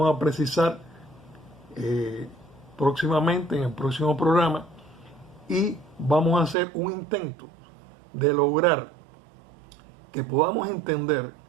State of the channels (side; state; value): left; drops out; at 6.6 s